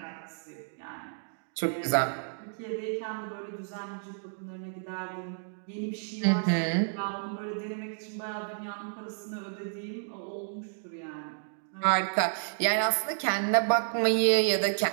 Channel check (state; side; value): silent; left; digital silence